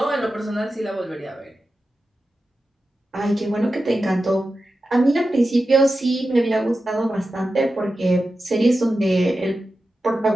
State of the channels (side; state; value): both; normal; correlation 0.92